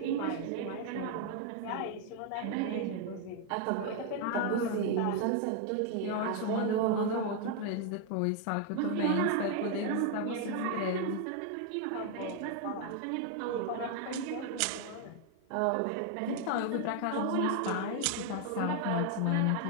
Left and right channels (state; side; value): different; both; correlation 0.00